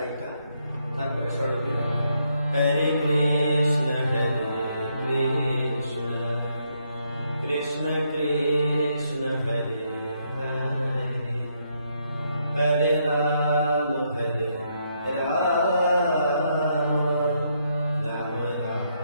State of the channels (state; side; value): inverted; both; correlation -0.76